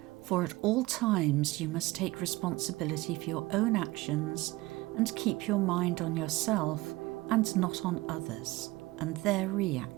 for at all times you must take responsibility for your own actions and keep your mind on yourself and not on others and their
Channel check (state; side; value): quieter; left; 20.4 dB